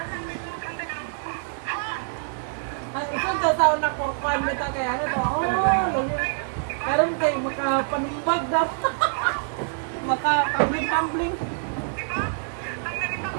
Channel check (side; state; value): left; silent; 61 dB below the other